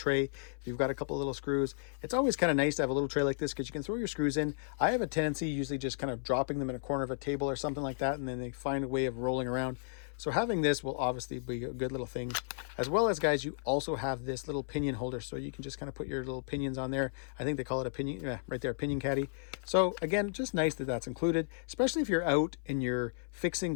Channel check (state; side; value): silent; right; 55 dB below the other